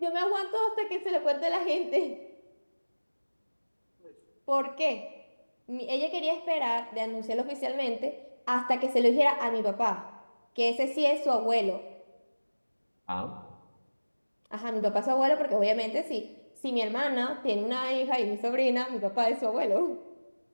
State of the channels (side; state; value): both; inverted; correlation -1.00